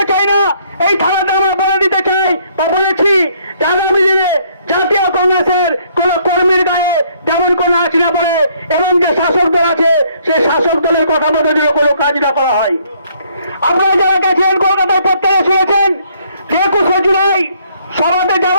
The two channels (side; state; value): both; inverted; correlation -0.66